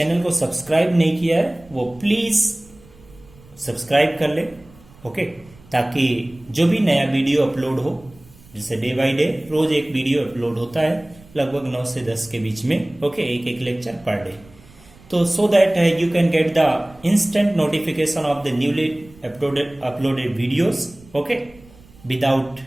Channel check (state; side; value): noise; right; rumble, 25 dB below the sound